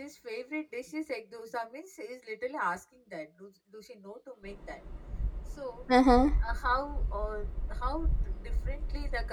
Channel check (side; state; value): both; identical; correlation 1.00